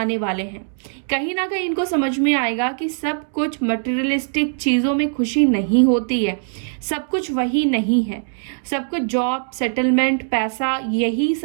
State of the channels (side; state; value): left; silent; 65 dB below the other